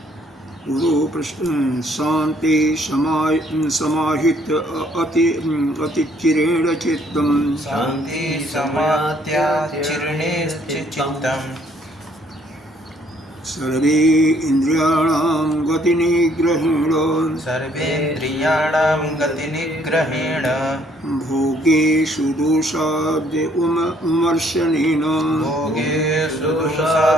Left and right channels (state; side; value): normal; both; correlation 0.64